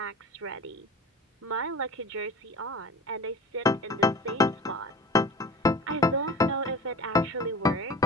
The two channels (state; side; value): normal; both; correlation 0.37